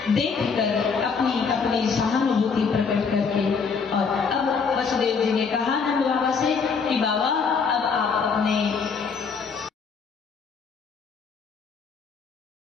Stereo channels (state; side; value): quieter; right; 5.5 dB